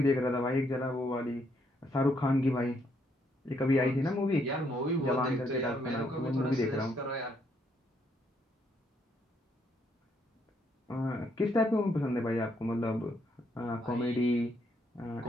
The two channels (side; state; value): both; normal; correlation 0.73